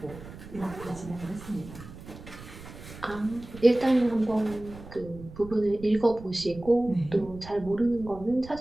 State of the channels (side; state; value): right; noise; rumble, 15 dB below the sound